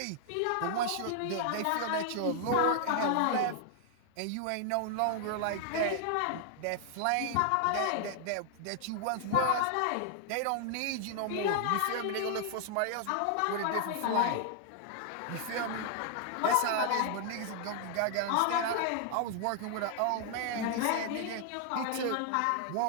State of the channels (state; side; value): different; both; correlation 0.00